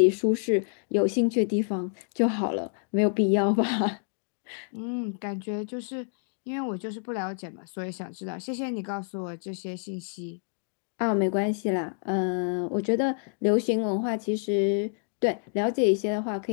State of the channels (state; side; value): silent; right; digital silence